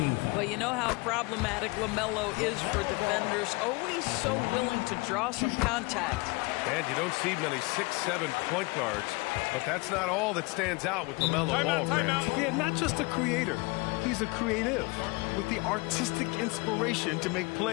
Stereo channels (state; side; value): quieter; right; 26.3 dB